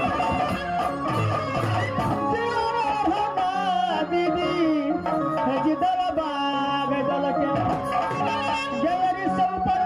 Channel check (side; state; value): both; identical; correlation 1.00